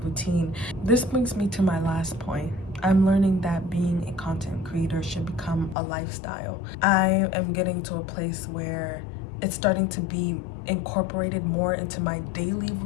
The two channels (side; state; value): right; drops out; at 5.8 s